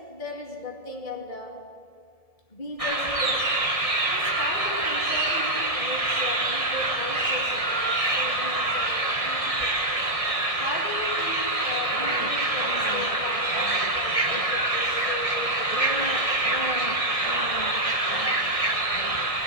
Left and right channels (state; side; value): late; right; 1.7 ms